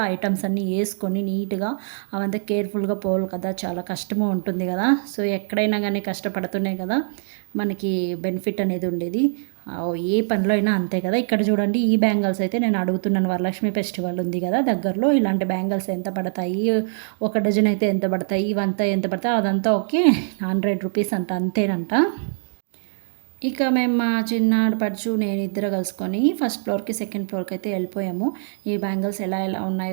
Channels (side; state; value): left; silent; digital silence